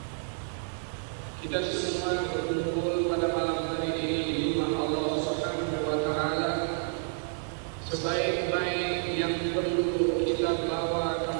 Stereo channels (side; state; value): left; silent; digital silence